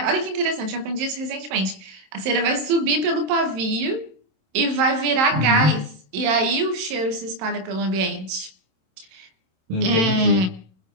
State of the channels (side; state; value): left; late; 27 ms